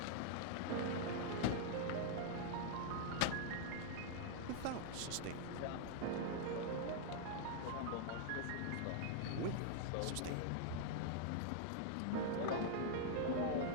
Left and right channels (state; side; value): different; both; correlation -0.01